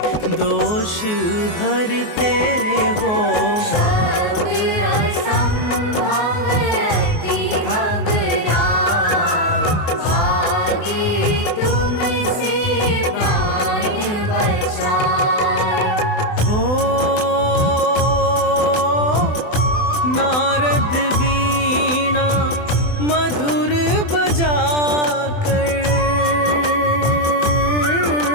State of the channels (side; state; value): right; late; 24 ms